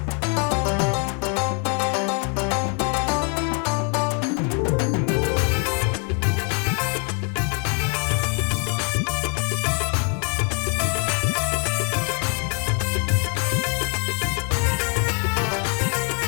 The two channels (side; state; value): right; quieter; 38.5 dB